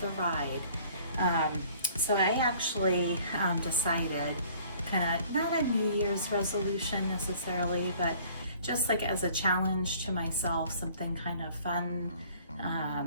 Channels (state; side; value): inverted; both; correlation -0.54